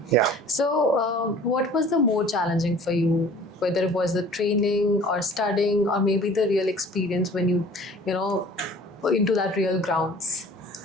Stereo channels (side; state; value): both; normal; correlation 0.48